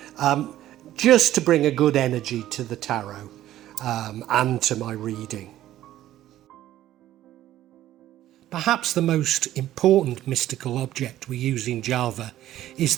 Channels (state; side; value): quieter; left; 13.4 dB